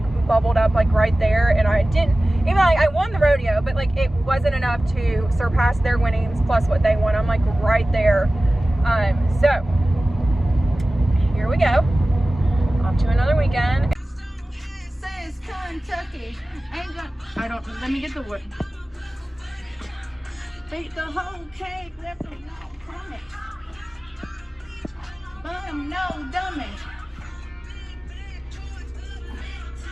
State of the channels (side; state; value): both; normal; correlation 0.96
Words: bubbled up like right there. And I didn't, even like I won the rodeo, but like it wasn't enough to surpass their winnings plus what they won. I'm like right there. So here we go, off to another weekend. Says Kentucky. Ain't gonna, I don't, let me get the wood. Take the whole cake, left them no crummy. Bum, no dummy.